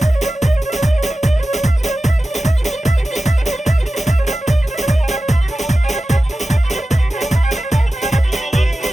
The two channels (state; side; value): normal; both; correlation 0.94